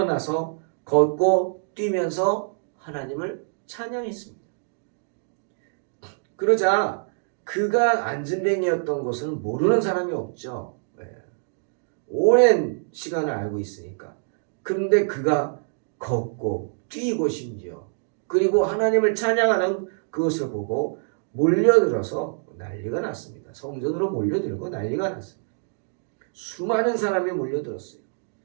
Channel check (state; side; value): silent; left; digital silence